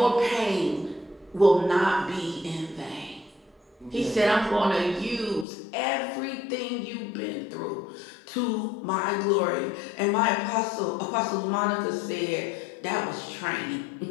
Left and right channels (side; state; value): right; drops out; at 5.5 s